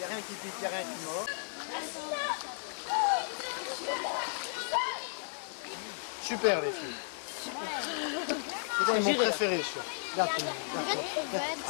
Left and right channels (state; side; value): silent; right; digital silence